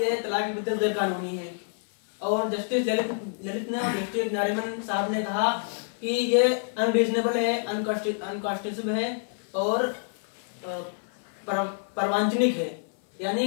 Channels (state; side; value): silent; right; 57 dB below the other